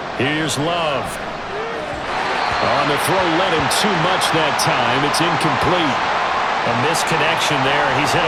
Here's Love. On the throw, led him too much that time. It's incomplete. A misconnection there. He's hit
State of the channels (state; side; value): identical; both; correlation 1.00